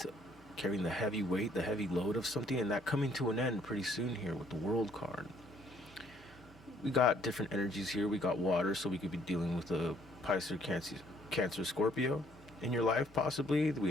heavy weight, the heavy load of something, and that coming to an end pretty soon here with the World card. We got different energies here. We got water, so we could be dealing with a Pisces, Cancer, Scorpio in your life, possibly. We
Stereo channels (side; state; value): both; normal; correlation 0.64